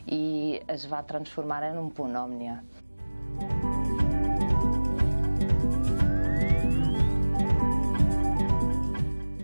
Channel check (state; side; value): inverted; both; correlation -1.00